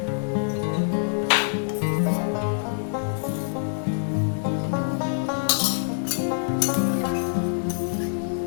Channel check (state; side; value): silent; right; 59 dB below the other